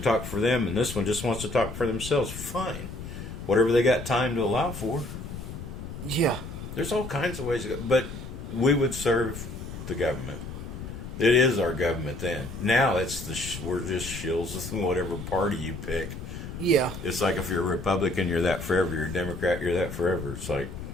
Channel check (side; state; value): left; noise; rumble, 9 dB below the sound